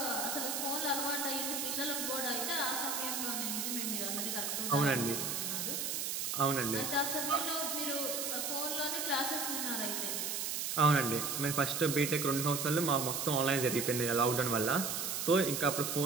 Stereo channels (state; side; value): noise; right; hiss, 1 dB below the sound